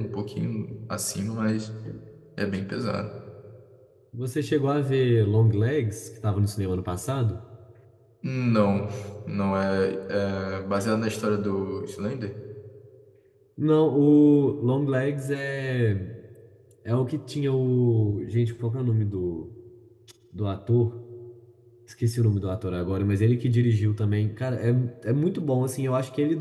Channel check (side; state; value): both; identical; correlation 1.00